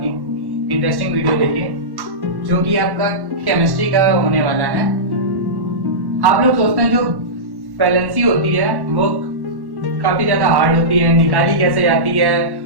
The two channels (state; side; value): late; left; 1.1 ms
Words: इंटरेस्टिंग वीडियो लेके, जो कि आपका केमिस्ट्री का होने वाला है। आप लोग सोचते हैं जो वैलेंसी होती है वो काफी ज्यादा हार्ड होती है, निकाली कैसे जाती है,